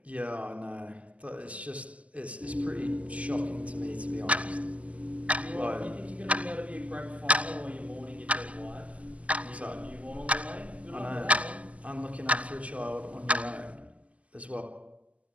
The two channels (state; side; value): late; left; 0.068 ms